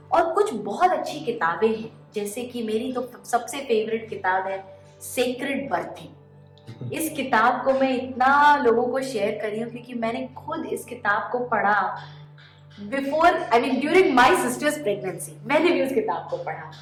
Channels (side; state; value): both; identical; correlation 1.00